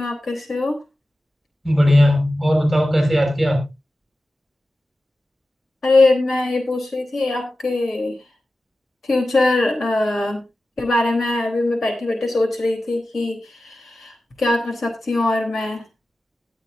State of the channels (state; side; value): normal; both; correlation 0.94